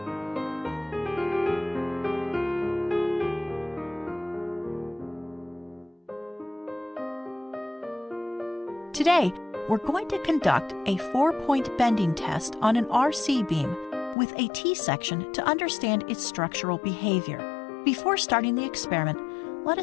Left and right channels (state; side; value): drops out; right; at 14.2 s